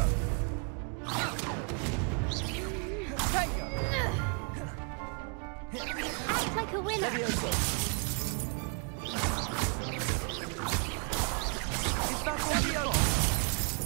Act like a winner. Levioso. Is that all you've got?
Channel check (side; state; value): left; quieter; 38.4 dB